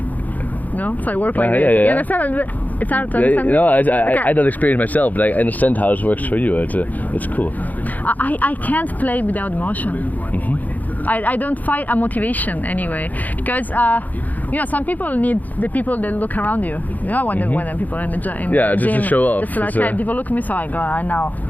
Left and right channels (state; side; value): late; right; 0.080 ms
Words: No? So I work like this. Yeah. You understand? It's hard to understand. No, I don't experience myself, but I understand how it works for you. It's cool. I can't play without emotion. I don't find a motivation anyway, because some people need the people that look around you. You know, when the people in the gym, just to show off. Just like, okay, people look at me, so I go, I know.